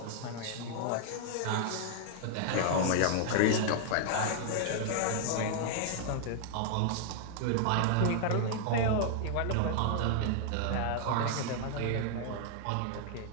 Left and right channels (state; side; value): different; both; correlation 0.00